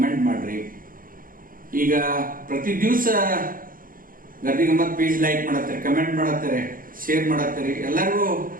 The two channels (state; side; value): late; left; 0.41 ms